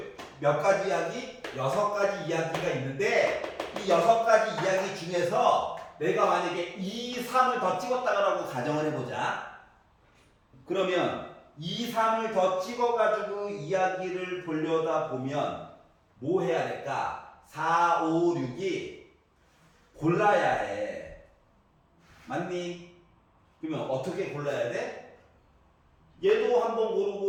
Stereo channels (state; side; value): identical; both; correlation 1.00